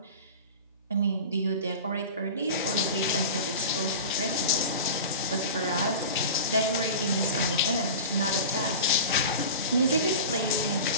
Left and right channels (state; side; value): inverted; both; correlation -0.33